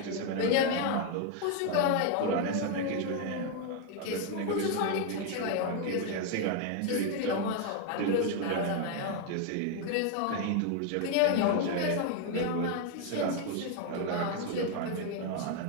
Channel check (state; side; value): different; both; correlation 0.01